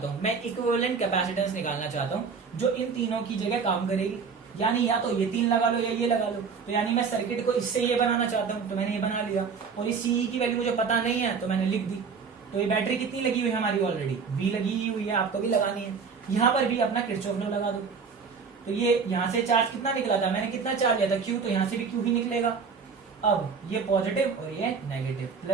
हूं, मैं इक्विवेलेंट कैपेसिटेंस निकालना चाहता हूं जो इन तीनों की जगह काम करेगी। यानी या तो ये 3 लगा लो या ये लगा लो। तो यानी मैं सर्किट को इससे ये बनाना चाहता हूं, तो मैंने ये बना लिया। और इस सीई की वैल्यू मुझे पता नहीं है तो मैंने लिख दी। तो ये बैटरी कितनी लगी हुई है हमारी, ऑलरेडी V लगी हुई है, आपको भी लगानी है। यहाँ पर भी अपना किरचॉफ लॉ लगा दो। तो ये यहाँ से चार्ज कितना निकला था, मैंने कितना चार्ज लिया था, Q, तो यहाँ से भी Q ही निकलेगा। अब ये पॉजिटिव और ये negative,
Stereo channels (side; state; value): left; quieter; 5.5 dB